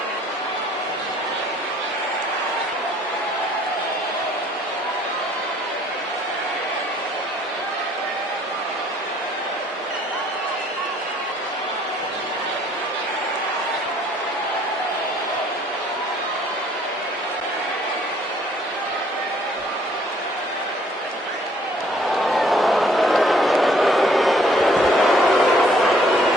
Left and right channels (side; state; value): both; normal; correlation 0.61